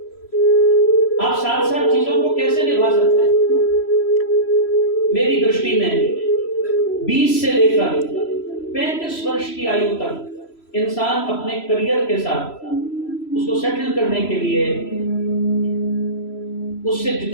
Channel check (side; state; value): right; late; 3.0 ms